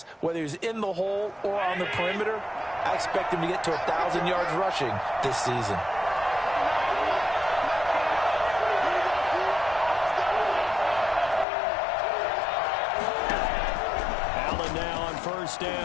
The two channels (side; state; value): right; drops out; at 11.5 s